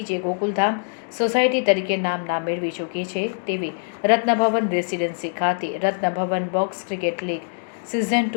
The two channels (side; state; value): right; silent; digital silence